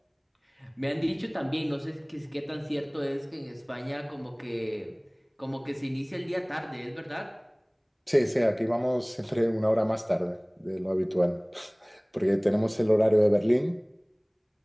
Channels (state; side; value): identical; both; correlation 1.00